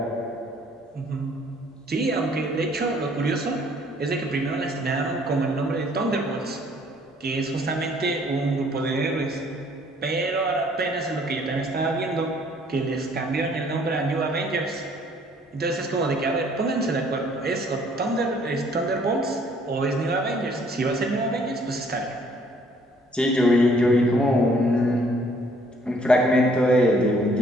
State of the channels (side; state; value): both; normal; correlation 0.61